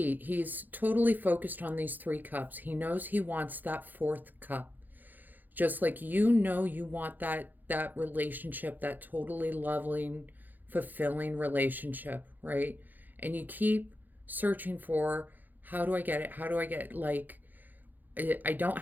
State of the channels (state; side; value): late; left; 0.086 ms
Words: he's totally focused on these 3 cups. He knows he wants that 4th cup. Just like you want that relationship, that totally loving, fulfilling relationship, right? And you keep searching for, how do I get it? How do I get, like, I don't